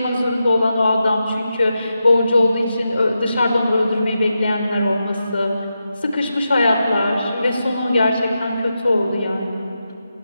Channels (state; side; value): inverted; both; correlation -0.88